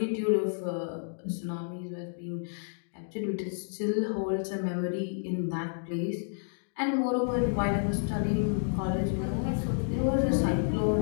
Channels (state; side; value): silent; right; digital silence